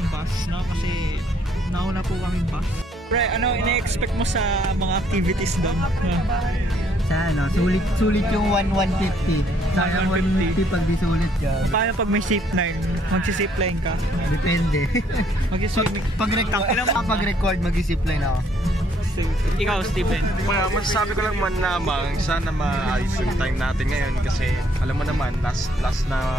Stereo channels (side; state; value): both; normal; correlation 0.66